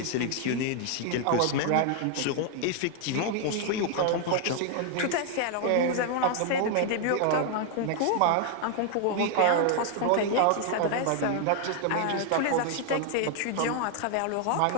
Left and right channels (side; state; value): both; different; correlation 0.00